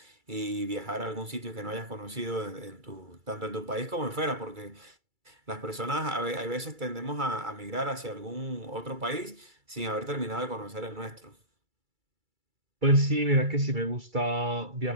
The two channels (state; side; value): late; left; 2.3 ms